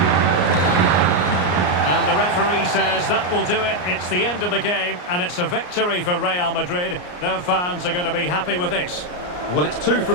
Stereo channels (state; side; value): late; right; 34 ms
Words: And the referee says that will do it. It's the end of the game, and it's a victory for Real Madrid. Their fans are going to be happy with this. Well, it's 2